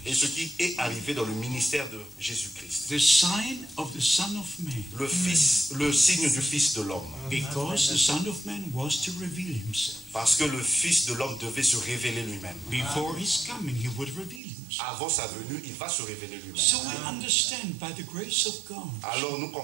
Et ce qui est arrivé dans le ministère de Jésus-Christ. The sign of the Son of Man. Le signe du Fils de l'homme. Because the Son of Man was to reveal himself. Parce que le Fils de l'homme devait se révéler lui-même. Before his coming, he would reveal himself. Avant sa venue, il va se révéler lui-même. So we understand by the grace of God. Alors nous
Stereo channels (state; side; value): drops out; left; at 14.4 s